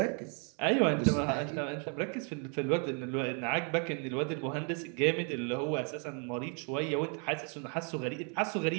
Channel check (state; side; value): quieter; left; 39.2 dB